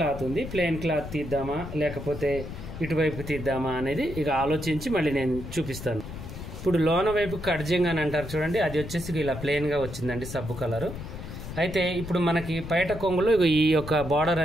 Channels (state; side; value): noise; left; rumble, 10 dB below the sound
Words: ఉంది. ప్లెయిన్ క్లాత్ తీద్దామా లేకపోతే ఇటువైపు తీద్దామా అనేది ఇక ఆలోచించి మళ్ళీ నేను చూపిస్తాను. ఇప్పుడు లోన వైపు కడ్జింగ్ అని అంటారు చూడండి, అది వచ్చేసి ఇలా ప్లెయిన్గా వచ్చిందండి సబ్బు కలరు. అయితే ఇప్పుడు మనకి పైట కొంగులో ఈ యొక్క బార్డర్